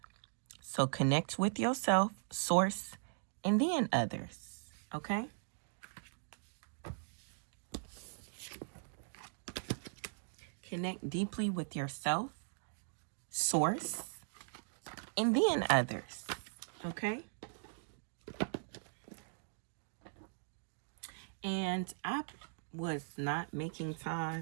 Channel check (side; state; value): left; silent; digital silence